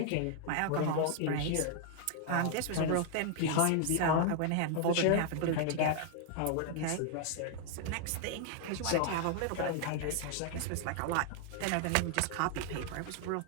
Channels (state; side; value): different; both; correlation 0.00